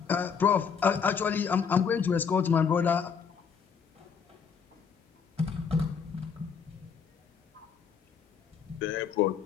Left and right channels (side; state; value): right; quieter; 6.5 dB